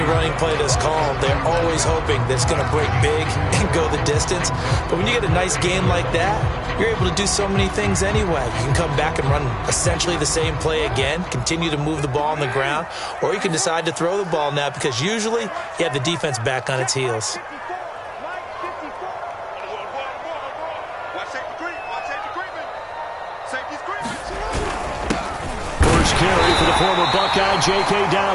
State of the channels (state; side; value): identical; both; correlation 1.00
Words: running play that's called, they're always hoping that it's going to break big and go the distance. But when you get a nice game like that, you're able to do so many things anyway. You can come back and run essentially the same play again, continue to move the ball on the ground, or you can decide to throw the ball now because usually you have the defense back on its heels. First carry for the former Buckeye, J.K.